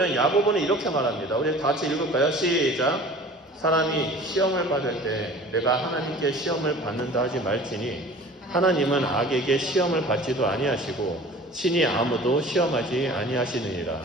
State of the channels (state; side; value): normal; both; correlation 0.44